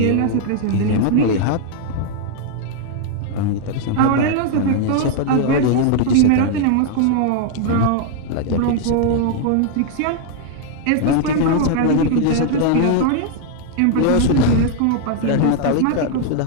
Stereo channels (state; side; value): different; both; correlation 0.00